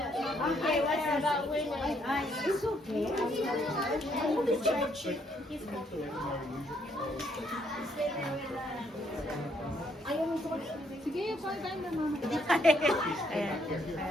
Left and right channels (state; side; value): normal; both; correlation 0.70